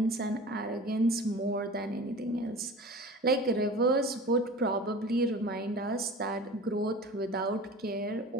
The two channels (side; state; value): both; normal; correlation 0.38